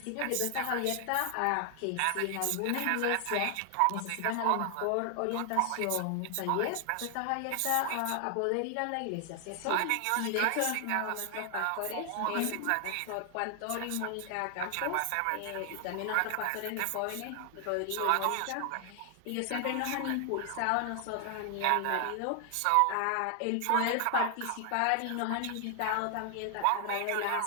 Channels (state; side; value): different; both; correlation 0.00